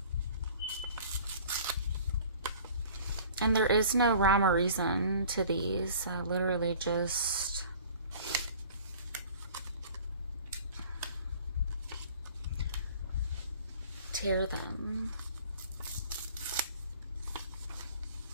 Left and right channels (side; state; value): both; inverted; correlation -0.48